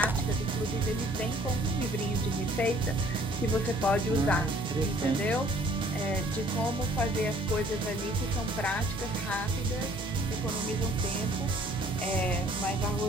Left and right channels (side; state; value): both; normal; correlation 0.57